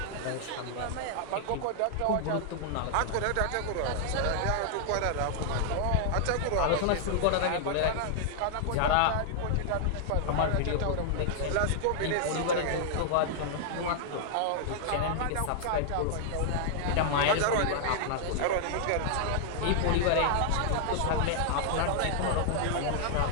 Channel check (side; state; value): both; different; correlation -0.01